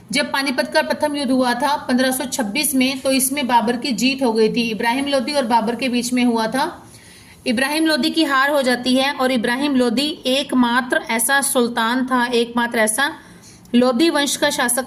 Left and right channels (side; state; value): both; identical; correlation 1.00